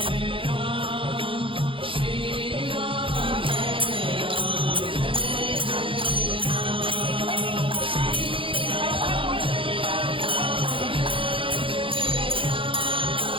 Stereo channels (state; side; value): late; left; 0.25 ms